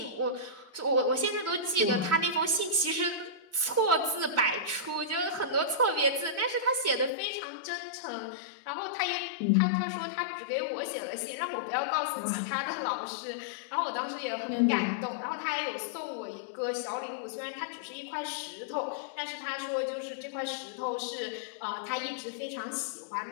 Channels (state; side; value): drops out; right; at 7.1 s